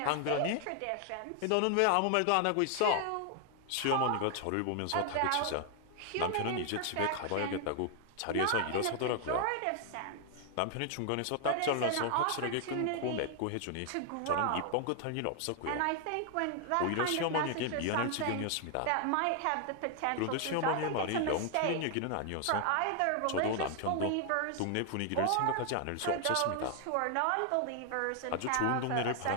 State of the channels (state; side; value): different; both; correlation 0.00